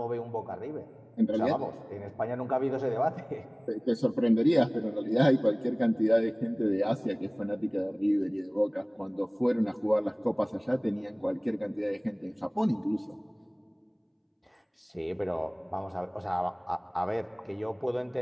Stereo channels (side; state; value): both; identical; correlation 1.00